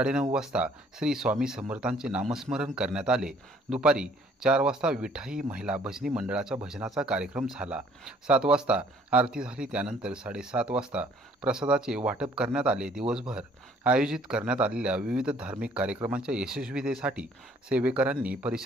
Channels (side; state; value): both; normal; correlation 0.59